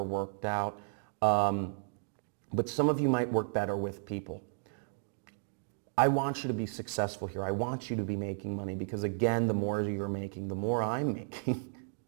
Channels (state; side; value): silent; left; digital silence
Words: worked out. But some of you might work better with people. I want you to be successful here. I want you to be making money because, again, the more you're making, the more I'm making.